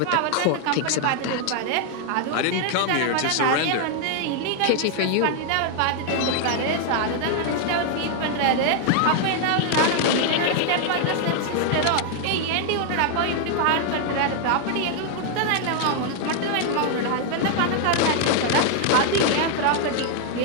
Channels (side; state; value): both; different; correlation 0.00